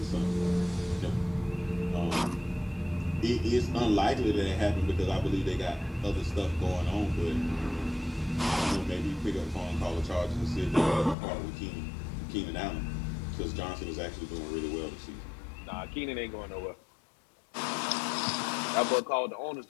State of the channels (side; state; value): right; drops out; at 11.2 s